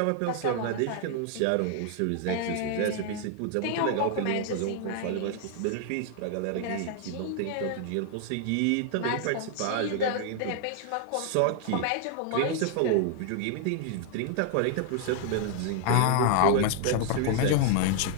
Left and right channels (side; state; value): both; different; correlation 0.00